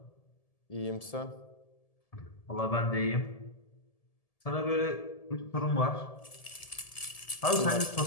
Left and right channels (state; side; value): late; right; 1.7 ms